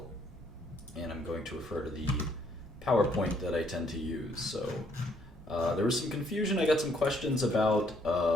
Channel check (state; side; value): normal; both; correlation 0.68